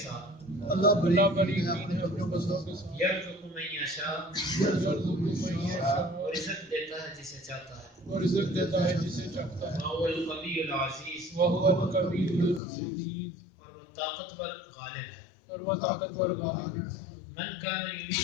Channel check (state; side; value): drops out; right; at 12.6 s